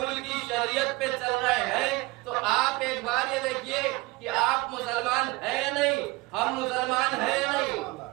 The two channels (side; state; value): left; quieter; 22.3 dB